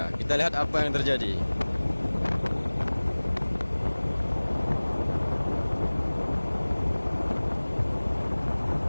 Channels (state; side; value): inverted; both; correlation -1.00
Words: Kita lihat apa yang terjadi.